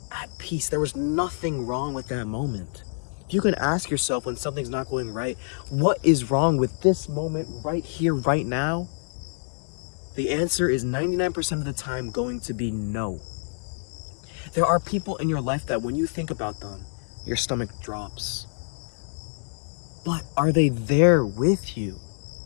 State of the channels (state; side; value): silent; right; digital silence